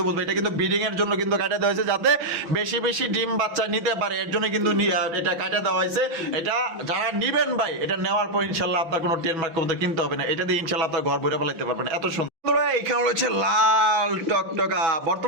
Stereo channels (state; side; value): late; left; 6.1 ms